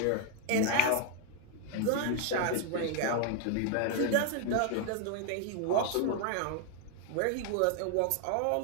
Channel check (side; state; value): both; different; correlation 0.00